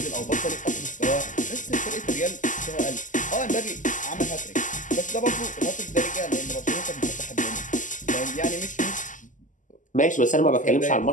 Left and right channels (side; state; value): right; late; 0.37 ms